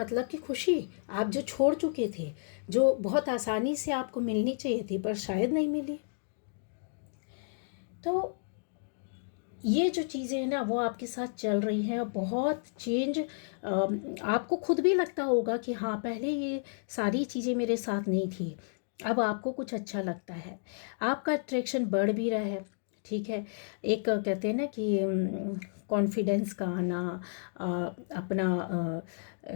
कि खुशी आप जो छोड़ चुके थे, जो बहुत आसानी से आपको मिलनी चाहिए थी पर शायद नहीं मिली। तो ये जो चीज़ें हैं ना वो आपके साथ चल रही हैं, बहुत चेंज आपको खुद भी लगता होगा कि हाँ पहले ये सारी चीज़ें मेरे साथ नहीं थी, अब आपको कुछ अच्छा लगता है, आपका अट्रैक्शन बढ़ भी रहा है, ठीक है। एक कहते हैं ना कि कॉन्फिडेंस का आना, अपना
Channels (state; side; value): silent; right; digital silence